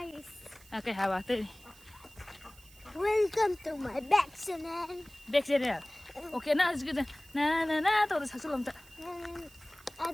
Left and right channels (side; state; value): right; noise; hiss, 23 dB below the sound